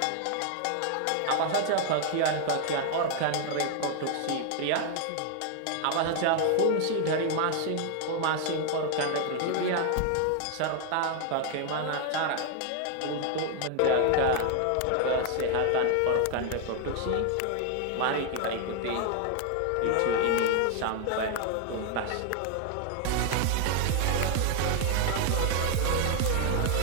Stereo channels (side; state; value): both; different; correlation 0.00